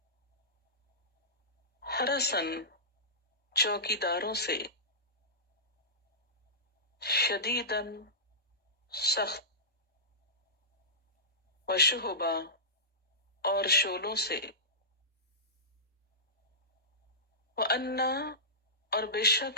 حرسن چوکیداروں سے، شدیدن سخت، وشہبا اور شولوں سے، وَأَنَّا اور بے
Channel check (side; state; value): both; normal; correlation -0.19